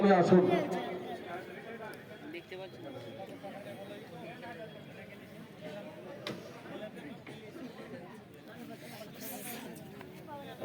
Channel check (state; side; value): identical; both; correlation 1.00